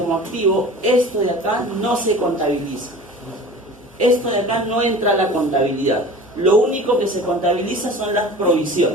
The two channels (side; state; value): both; normal; correlation 0.39